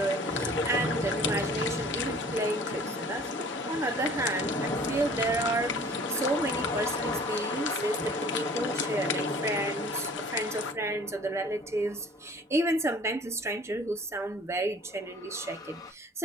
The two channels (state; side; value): normal; both; correlation 0.49